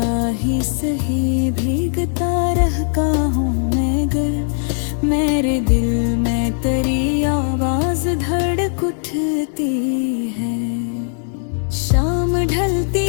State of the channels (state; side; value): silent; right; 61 dB below the other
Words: ही सही भीगता रहता हूँ मगर मेरे दिल में तेरी आवाज धड़क उठती है। शाम ढलती